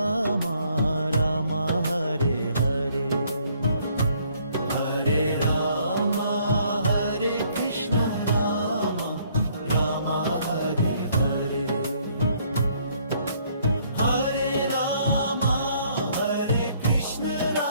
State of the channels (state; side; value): inverted; both; correlation -0.64